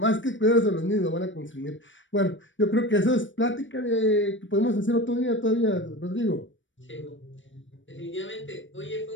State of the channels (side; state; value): right; late; 0.55 ms